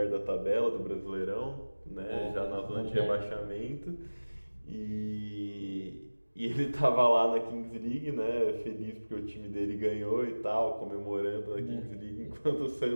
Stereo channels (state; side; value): inverted; both; correlation -1.00